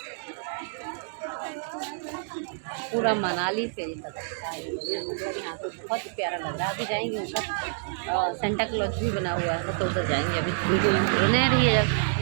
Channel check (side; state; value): left; silent; digital silence